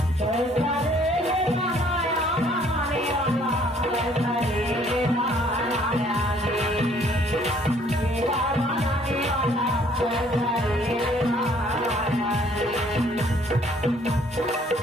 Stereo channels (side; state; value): both; normal; correlation 0.61